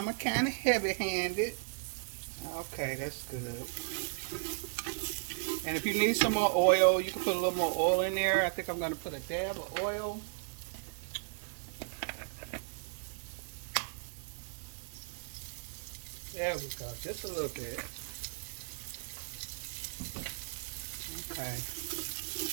kind of heavy-handed. Okay, that's good. And if you need some more oil, you can put a little more oil in there. I think I'm going to put a dab of oil. There we go, just a little bit. Okay.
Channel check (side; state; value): left; silent; digital silence